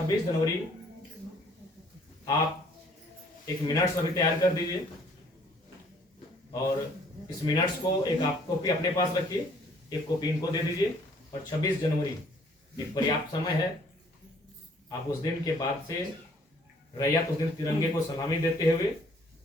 जनवरी आप एक मिनट्स अभी तैयार कर दीजिए, और इस मिनट्स को एक आप कॉपी अपने पास रखिए, एक कॉपी इनको दे दीजिए। और 26 जनवरी एक पर्याप्त समय है, आप उस दिन के बाद से रैयत उस दिन तिरंगे को सलामी देते हुए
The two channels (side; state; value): both; normal; correlation 0.60